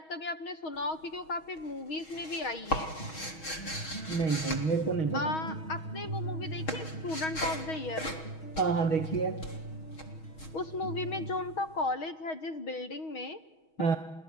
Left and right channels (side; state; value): right; late; 6.3 ms